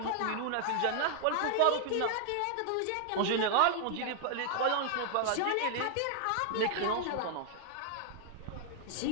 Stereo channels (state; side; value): different; both; correlation -0.01